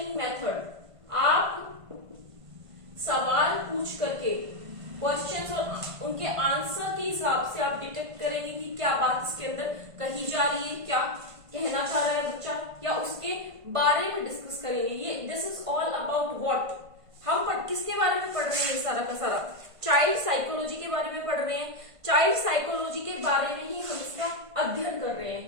मेथड, आप सवाल पूछ करके क्वेश्चंस और उनके आंसर के हिसाब से आप डिटेक्ट करेंगे कि क्या बात इसके अंदर कही जा रही है, क्या कहना चाह रहा है बच्चा, या उसके बारे में डिस्कस करेंगे। ये this is all about what, हम किसके बारे में पढ़ रहे हैं? सारा का सारा चाइल्ड साइकोलॉजी के बारे में पढ़ रहे हैं। चाइल्ड साइकोलॉजी के बारे में ही हम इसका अध्ययन कर रहे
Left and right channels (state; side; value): late; left; 1.5 ms